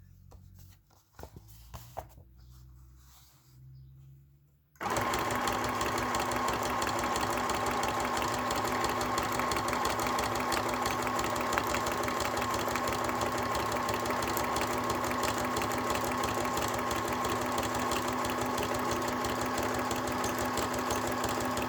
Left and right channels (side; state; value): both; identical; correlation 1.00